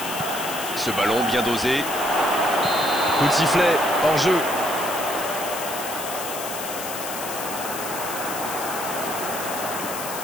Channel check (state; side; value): noise; left; hiss, 7 dB below the sound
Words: Ce ballon bien dosé. Coup de sifflet, hors jeu.